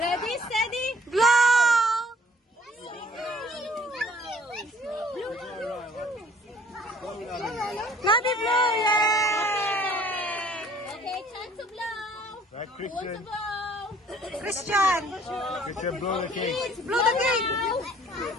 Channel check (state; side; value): normal; both; correlation 0.56